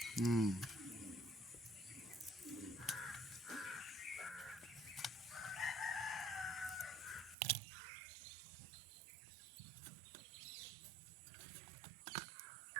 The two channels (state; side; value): drops out; left; at 7.4 s